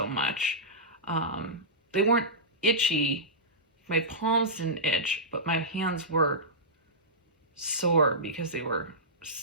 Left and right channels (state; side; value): normal; both; correlation -0.16